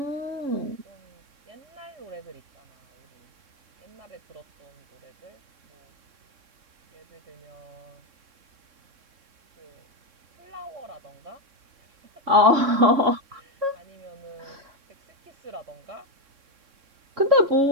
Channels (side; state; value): left; late; 3.6 ms